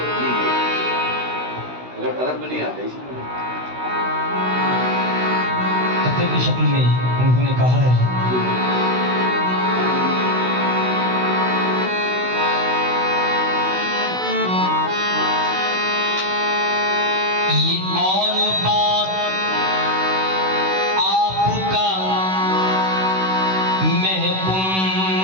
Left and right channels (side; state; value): left; late; 16 ms